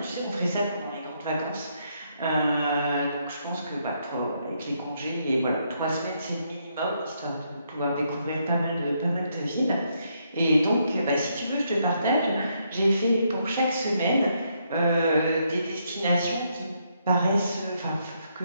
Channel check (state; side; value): inverted; both; correlation -0.75